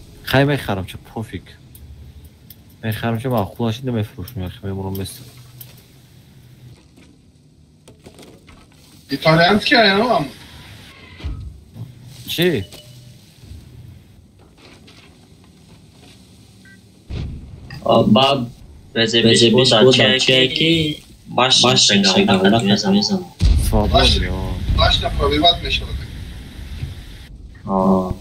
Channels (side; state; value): both; identical; correlation 1.00